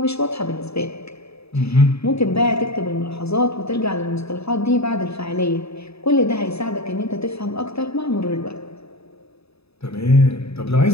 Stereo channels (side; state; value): right; late; 0.79 ms